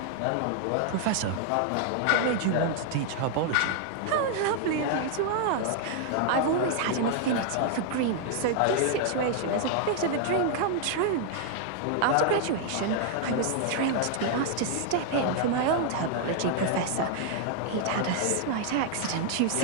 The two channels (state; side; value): different; both; correlation 0.00